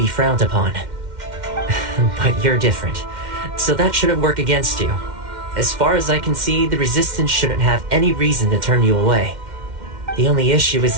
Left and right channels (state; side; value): late; left; 2.1 ms